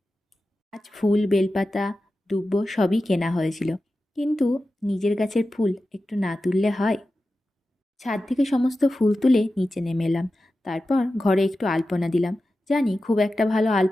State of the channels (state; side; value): normal; both; correlation 0.93